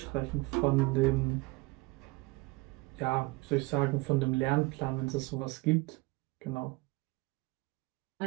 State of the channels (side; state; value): left; quieter; 23.2 dB